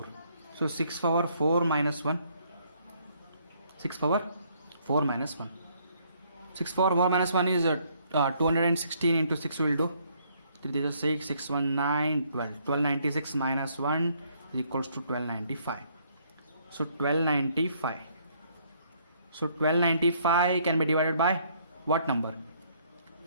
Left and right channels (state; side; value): inverted; both; correlation -0.67